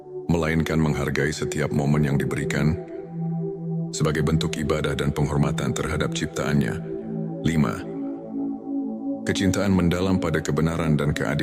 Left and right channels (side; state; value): both; identical; correlation 1.00